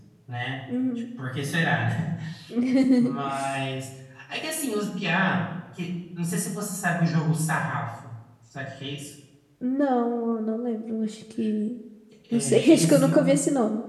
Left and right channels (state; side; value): identical; both; correlation 1.00